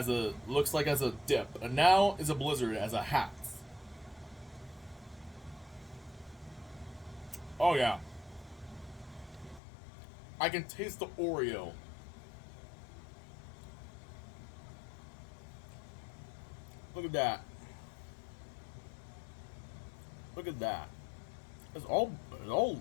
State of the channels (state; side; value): drops out; right; at 9.6 s